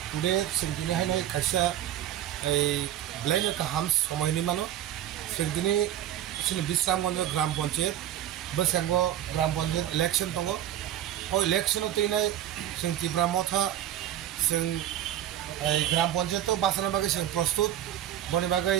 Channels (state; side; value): quieter; left; 11.7 dB